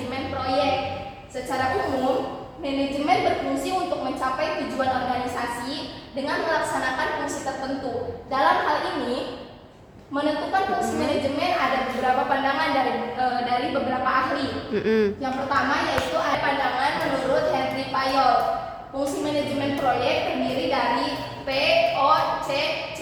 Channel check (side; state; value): both; identical; correlation 1.00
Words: proyek. Secara umum, manajemen berfungsi untuk mencapai tujuan organisasi dengan melaksanakan fungsi tertentu. Dalam hal ini, menentukan fungsi manajemen ada beberapa pandangan dari beberapa ahli. Yang pertama yaitu ada pandangan menurut Henry Fayol. Fungsi manajemen proyek terdiri dari POCCC,